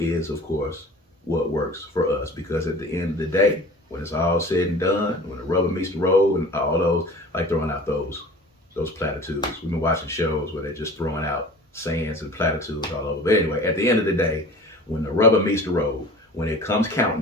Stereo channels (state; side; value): normal; both; correlation 0.41